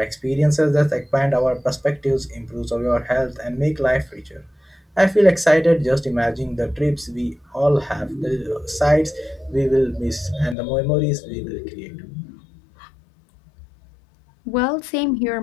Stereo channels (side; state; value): right; drops out; at 10.6 s